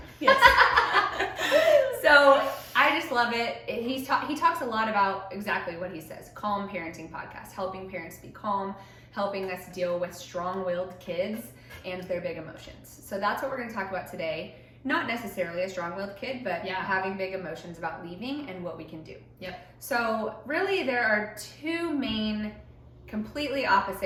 Yes. So I just love it. He talks a lot about exactly what he says. Calm Parenting Podcast, helping parents be calm, helping us deal with strong-willed kids and their big emotions. So that's what we're going to talk about today. Not necessarily a strong-willed kid, but having big emotions about leaving and what we can do. Yep. So really there are two main completely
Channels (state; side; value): identical; both; correlation 1.00